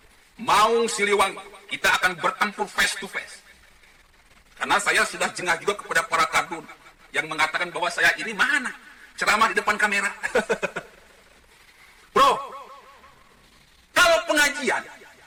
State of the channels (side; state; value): both; identical; correlation 1.00